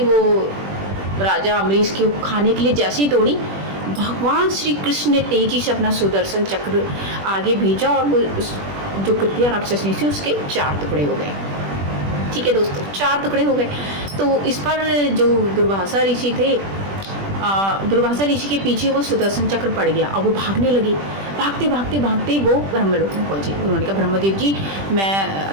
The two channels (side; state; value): left; late; 20 ms